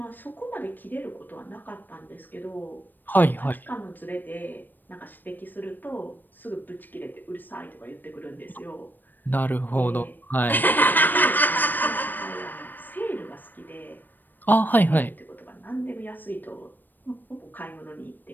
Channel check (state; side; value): late; right; 0.090 ms